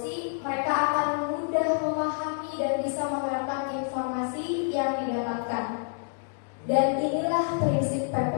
Dan inilah prinsip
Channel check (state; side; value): silent; right; 59 dB below the other